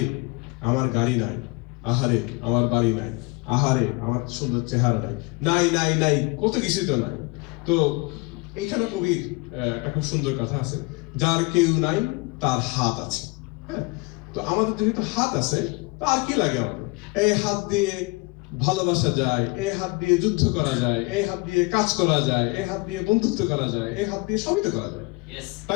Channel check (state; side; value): quieter; right; 26.8 dB